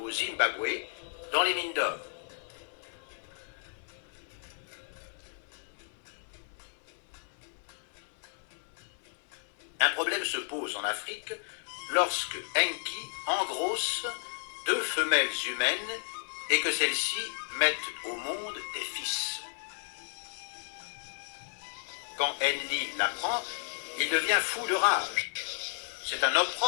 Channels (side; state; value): right; silent; 56 dB below the other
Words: au Zimbabwe dans les mines d'or. Un problème se pose en Afrique lorsque Enki engrosse 2 femelles humaines et que celles-ci mettent au monde des fils. Quand Enlil l'apprend, il devient fou de rage. C'est un